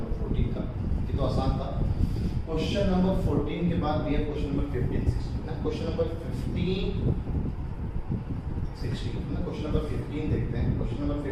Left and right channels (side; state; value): both; identical; correlation 1.00